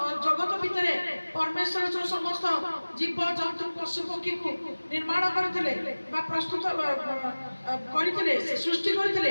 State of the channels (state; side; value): inverted; both; correlation -1.00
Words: ଜଗତ ଭିତରେ ପରମେଶ୍ୱର ଯୋଉ ସମସ୍ତ ଜୀବ ଜନ୍ତୁ ପଶୁ ପକ୍ଷୀକୁ ନିର୍ମାଣ କରିଥିଲେ ବା ପ୍ରସ୍ତୁତ କରିଥିଲେ, ସୃଷ୍ଟି